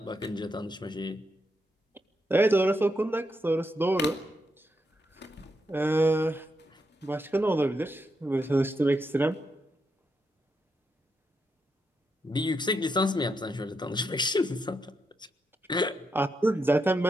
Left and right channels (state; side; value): normal; both; correlation 0.82